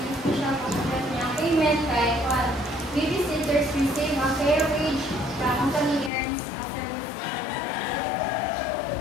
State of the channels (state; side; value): drops out; right; at 6.1 s